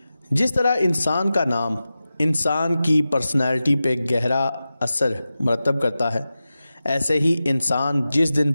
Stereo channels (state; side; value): inverted; both; correlation -0.94